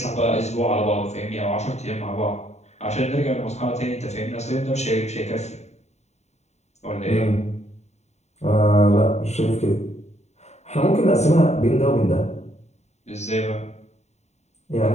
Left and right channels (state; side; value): late; right; 0.32 ms